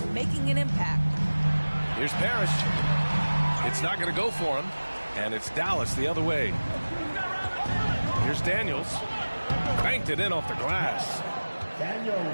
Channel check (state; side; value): inverted; both; correlation -1.00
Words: making an impact. Here's Parrish. It's not going to go for him, and it's Dallas the other way. Here's Daniels. Banked it in off the glass.